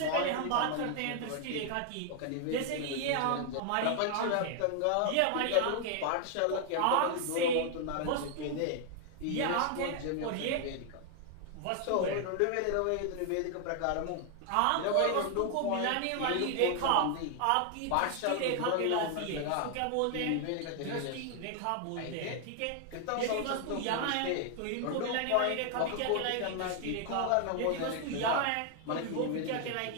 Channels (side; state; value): both; different; correlation 0.00